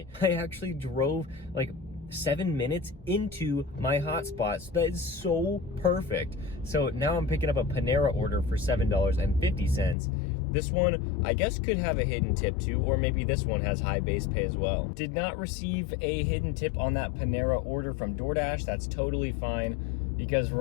I actually drove like 7 minutes into my hotspot, so that is so perfect. So now I'm picking up a Panera order for $7.50. This one, I guess, could have a hidden tip too, or maybe this one has high base pay as well. Did not receive a hidden tip on that Panera order from Doordash. That's totally fine, because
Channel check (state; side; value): drops out; right; at 10.0 s